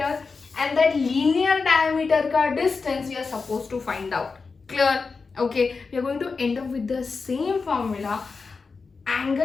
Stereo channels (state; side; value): quieter; right; 4.6 dB